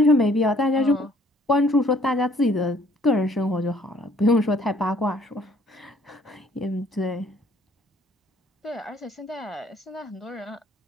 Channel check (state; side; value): normal; both; correlation 0.60